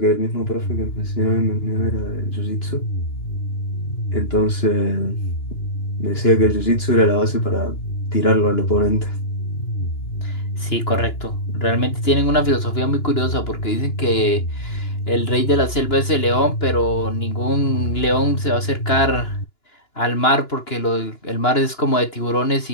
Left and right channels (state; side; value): late; right; 2.9 ms